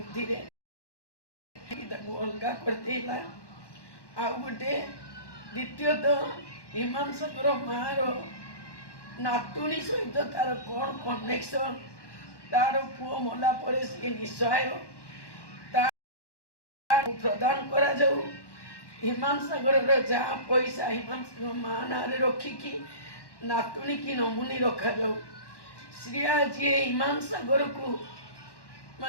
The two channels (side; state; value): right; late; 1.1 ms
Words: अलगा करदेला आउ गोटे द्वितीयतः हिमांशकर माँ नातुणी सहित तार कौन कनेक्शन तार पुओ मला परे सी निस्सहाय प्रदान करा जाऊ हिमांशकर जहाँ पैसा हिमांशकर माँ ना रखिकी नातुणी की नमुनी रखा जाऊ श्रिया जी हिमांशकर को